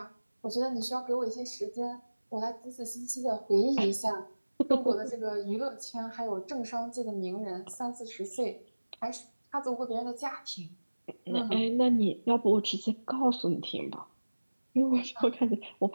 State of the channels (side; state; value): both; inverted; correlation -1.00